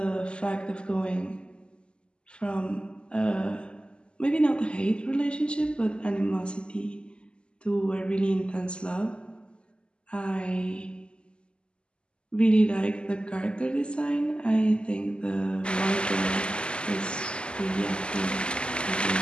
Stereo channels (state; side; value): late; right; 0.050 ms